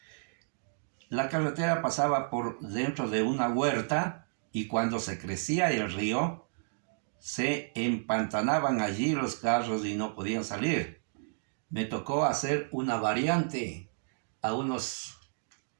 la carretera pasaba por dentro de una huerta y cuando se crecía el río, se empantanaban allí los carros y no podían salir. Me tocó hacer una variante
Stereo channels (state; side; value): silent; left; digital silence